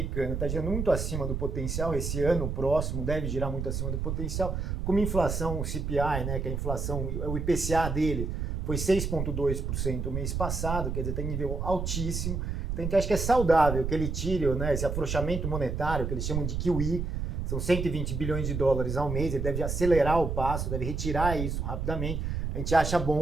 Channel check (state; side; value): noise; right; rumble, 2 dB below the sound